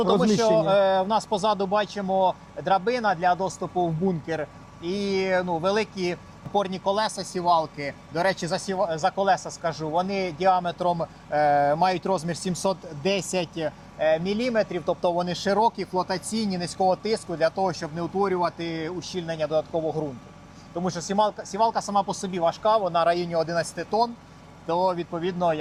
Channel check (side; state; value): both; identical; correlation 1.00